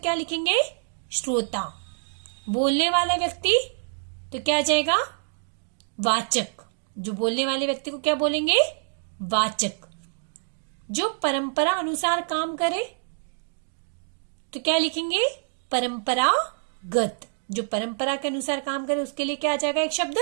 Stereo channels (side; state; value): left; silent; digital silence